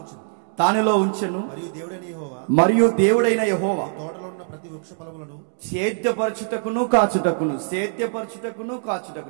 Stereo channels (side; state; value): left; silent; digital silence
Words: దానిలో ఉంచెను. మరియు దేవుడైన యెహోవా సేద్యపరచుటకును కాచుటకును.